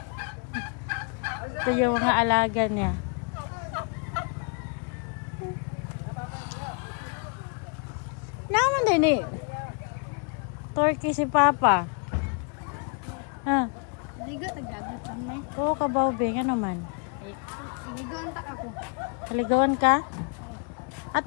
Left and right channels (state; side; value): quieter; right; 37.5 dB